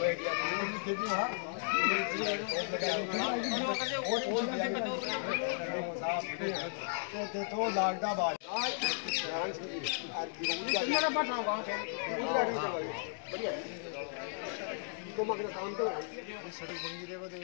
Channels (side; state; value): right; silent; digital silence